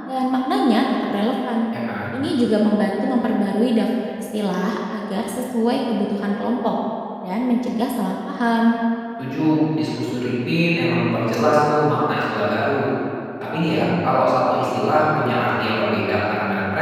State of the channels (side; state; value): both; identical; correlation 1.00